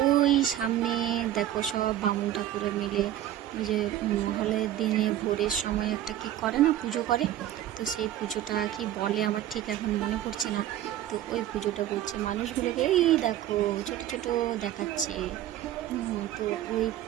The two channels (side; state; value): left; quieter; 12.3 dB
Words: ওই সামনে দেখো সব বামুন ঠাকুরে মিলে ওই যে মহালয়ের দিনে ভোরের সময় একটা কি করে না, পুজো করে। তো সেই পুজোটা কি বলে আমার ঠিক এখন মনে পড়ছে না। তো ওই পুজোটা করছে, মানুষগুলোকে এই দেখো ছোট ছোট দেখাচ্ছে। তো ওই